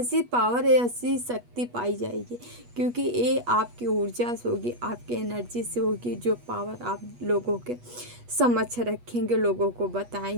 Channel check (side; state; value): left; late; 8.3 ms